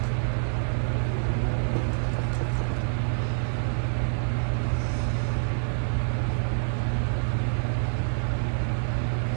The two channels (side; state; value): left; silent; 57 dB below the other